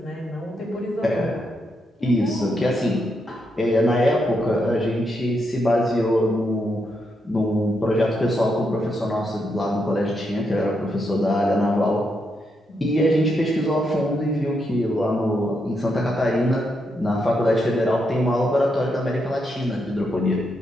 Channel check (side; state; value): both; normal; correlation 0.81